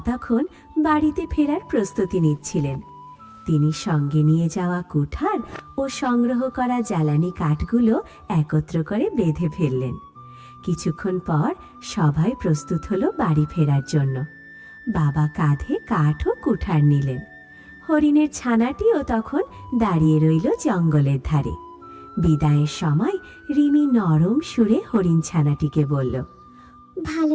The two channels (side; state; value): both; identical; correlation 1.00